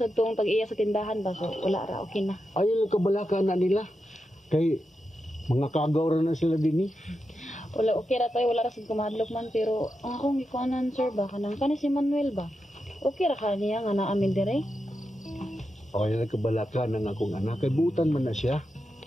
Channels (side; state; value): both; normal; correlation 0.88